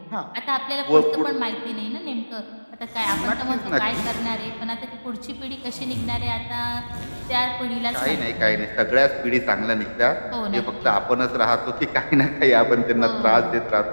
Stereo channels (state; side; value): inverted; both; correlation -1.00